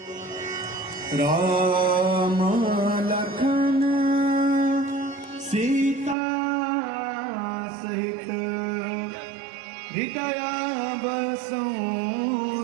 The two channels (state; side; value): drops out; left; at 6.2 s